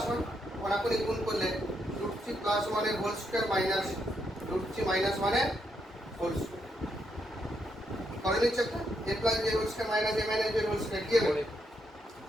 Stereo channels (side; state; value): both; normal; correlation 0.79